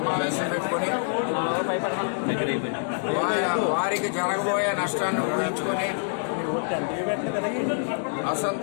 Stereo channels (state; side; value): silent; right; 61 dB below the other